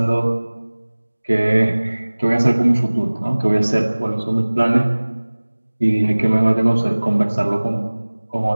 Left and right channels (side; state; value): both; inverted; correlation -1.00